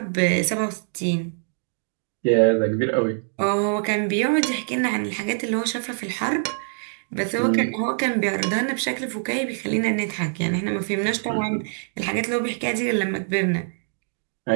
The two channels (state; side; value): silent; left; digital silence